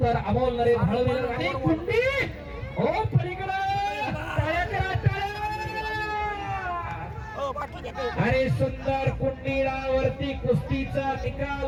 तर अमोल नरेश हळवीकर आणि कुंडी हो पलीकडे टाळ्या करा, टाळ्या. आणि सुंदर कुंडीडावरती कुस्तीचा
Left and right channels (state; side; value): identical; both; correlation 1.00